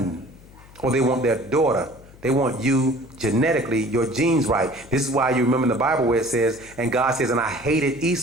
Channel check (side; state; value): left; noise; hum, 22 dB below the sound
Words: or they want their daughter. They want you genetically, your genes right. This is why you remember in the Bible where it says, and God says, and I hated